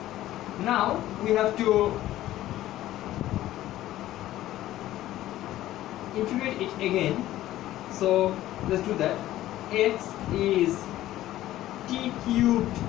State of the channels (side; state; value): right; quieter; 14.4 dB